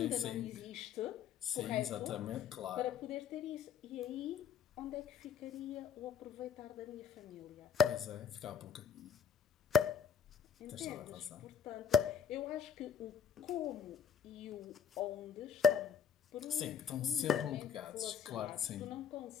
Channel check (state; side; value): quieter; right; 6.9 dB